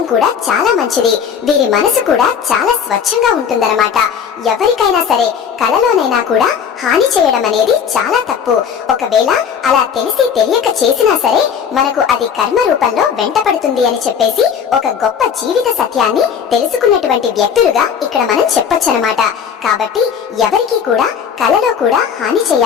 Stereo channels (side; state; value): right; quieter; 7.4 dB